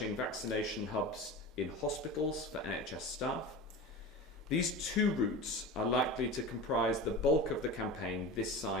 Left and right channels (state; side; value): normal; both; correlation 0.30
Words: vaccination hubs in hospitals for NHS staff. These two routes are likely to comprise the bulk of the campaign this